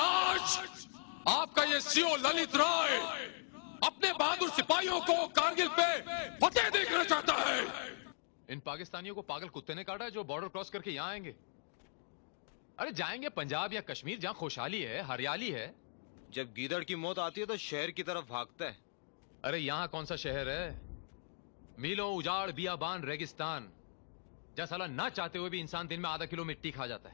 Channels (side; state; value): right; silent; digital silence